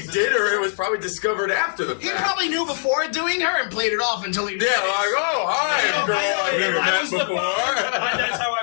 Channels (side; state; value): right; silent; digital silence